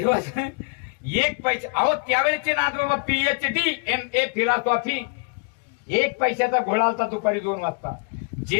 एक पैसे, अहो त्यावेळेचे नाथबाबा PhD MA फिलॉसॉफी, 1 पैशाचा घोळा होता दुपारी 2 वाजता.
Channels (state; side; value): quieter; right; 35.2 dB